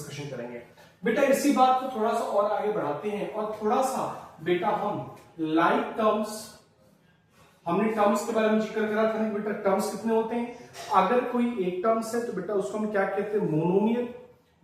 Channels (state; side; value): identical; both; correlation 1.00